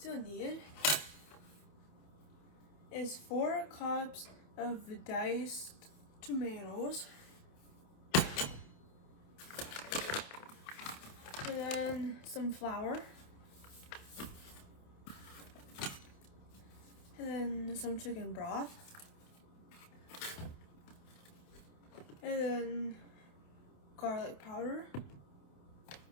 you'll need is 4 cups of diced tomatoes, and then some flour, and then some chicken broth, and then garlic powder,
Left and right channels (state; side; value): late; right; 27 ms